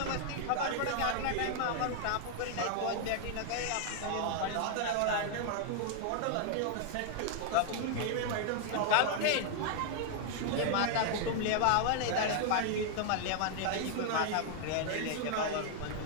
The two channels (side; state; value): both; different; correlation 0.00